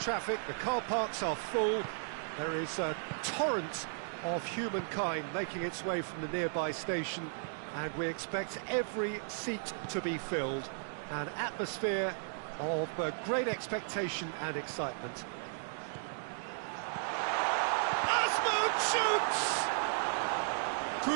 traffic. The car parks are full. There is a torrent of humankind making its way from the nearby station, and we expect every seat to be filled. An atmosphere of great expectation and excitement. Shoots!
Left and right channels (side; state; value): left; silent; digital silence